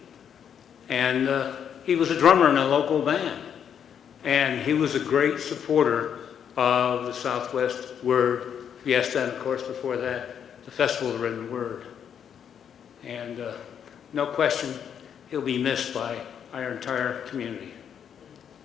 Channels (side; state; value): right; quieter; 8.3 dB